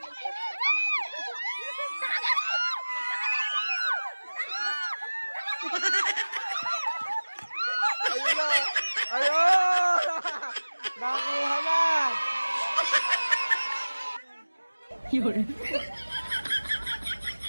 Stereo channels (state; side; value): inverted; both; correlation -1.00